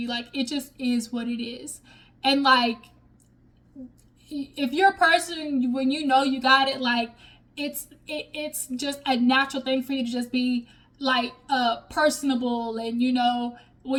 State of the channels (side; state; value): both; identical; correlation 1.00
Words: Like, it just is what it is. And like, if you're a person, when you got it, like, it's just a natural thing for you to just be like personable. And